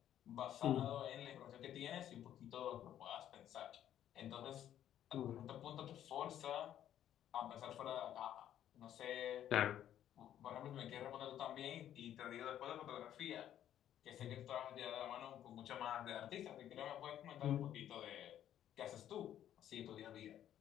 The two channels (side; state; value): right; quieter; 11.1 dB